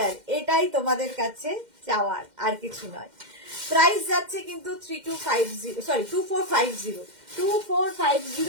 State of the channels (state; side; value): late; left; 2.1 ms